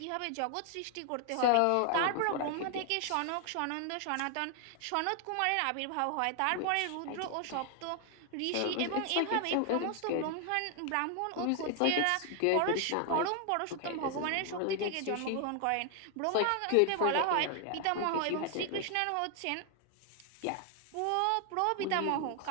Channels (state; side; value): different; both; correlation 0.00